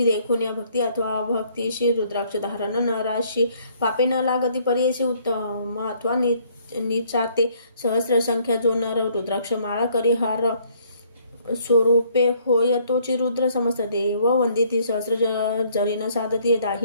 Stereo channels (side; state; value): both; inverted; correlation -0.64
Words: देखून या भक्ती अथवा भक्तीशी रुद्राक्ष धारण नराशी पापे न लागती परीशी उत्तम अथवा निचाते सहस्र संख्या जो नर रुद्राक्ष माळा करी हार स्वरूपे होय तोची रुद्र समस्त देव वंदिती सहस्र जरीन साधती